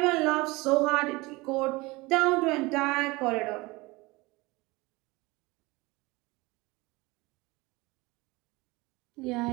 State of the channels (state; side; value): quieter; left; 22.7 dB